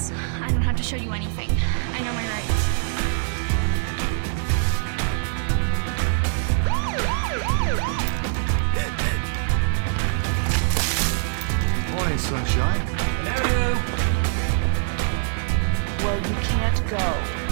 I don't have to show you anything. I know my rights. Morning, sunshine. Hello. Well, you can't go.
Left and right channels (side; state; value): left; silent; digital silence